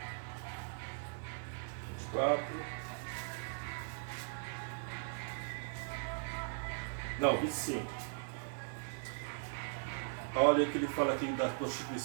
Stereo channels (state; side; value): silent; left; 52 dB below the other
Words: Não, 25. Olha o que ele fala aqui da